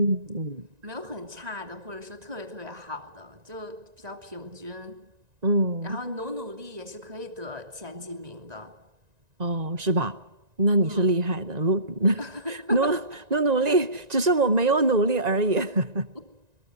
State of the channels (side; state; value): left; late; 1.9 ms